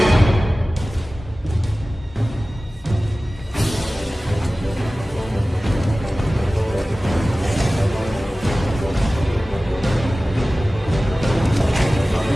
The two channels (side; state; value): both; normal; correlation 0.97